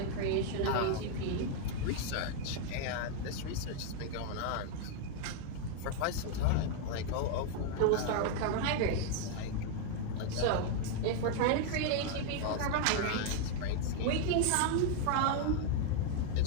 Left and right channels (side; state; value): both; different; correlation 0.00